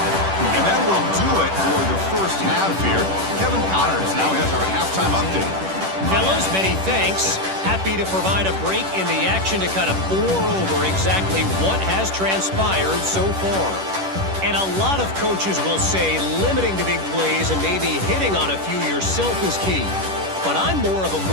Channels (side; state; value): left; late; 10 ms